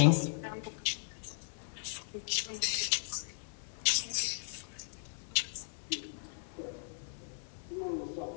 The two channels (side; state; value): right; silent; 53 dB below the other